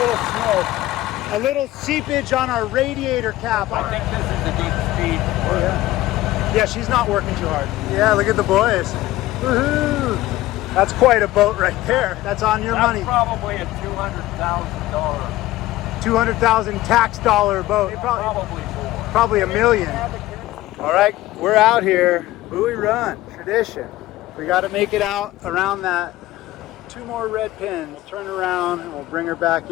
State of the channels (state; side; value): quieter; right; 16.6 dB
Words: smoke. A little seepage on our radiator cap. I think this is a good speed. Oh, yeah. Yeah, she's not working too hard. Yeah, look at the boys. Woohoo! That's quite a boat right there. That's on your money. Probably a $200,000. 200,000 tax dollar boat. Probably more. Probably $1 million. All right, we're out here. Buoy Run, tradition. We got to make it out around that 2 more red pins. We'll turn around and we'll bring her back